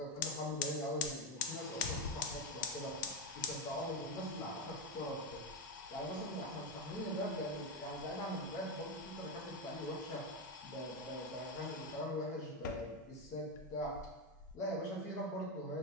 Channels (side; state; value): both; normal; correlation 0.10